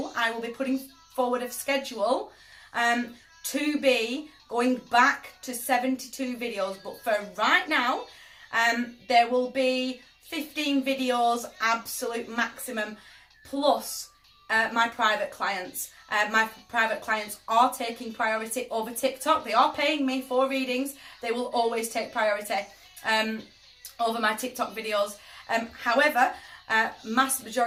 I will be putting forward a schedule to be going back to 72 videos. But for right now, there will be 15 videos, absolute maximum, plus my private clients. My private clients are taking priority over TikTok. They are paying me for readings. They will always take priority over my TikTok videos. However, mass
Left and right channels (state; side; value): identical; both; correlation 1.00